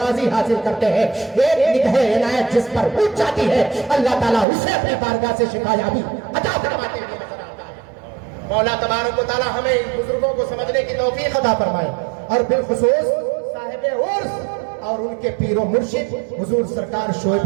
حاصل کرتے ہیں، ایک نگاہ عنایت جس پر اٹھ جاتی ہے اللہ تعالیٰ اسے اپنی بارگاہ سے شفا یابی عطا فرماتے ہوئے نظر آتا ہے۔ مولا تبارک و تعالیٰ ہمیں ان بزرگوں کو سمجھنے کی توفیق عطا فرمائے، اور بالخصوص صاحب عرس اور ان کے پیر و مرشد حضور سرکار شعیب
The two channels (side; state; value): left; drops out; at 4.5 s